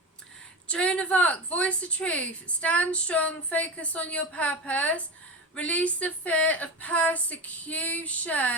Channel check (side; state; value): both; normal; correlation 0.23